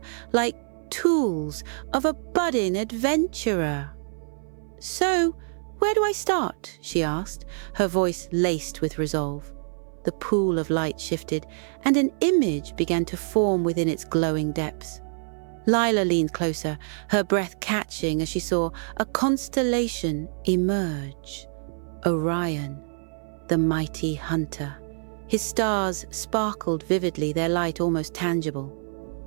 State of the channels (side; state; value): left; silent; 59 dB below the other